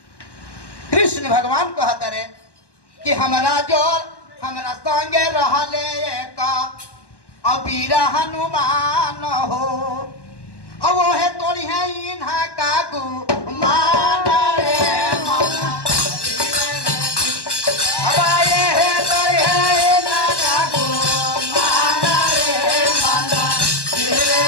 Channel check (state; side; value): late; right; 1.1 ms